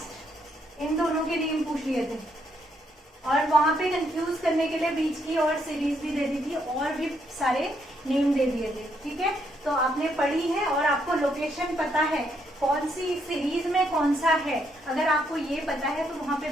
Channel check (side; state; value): both; normal; correlation 0.74